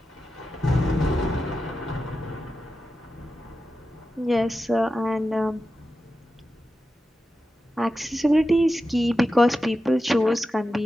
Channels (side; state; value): both; normal; correlation 0.91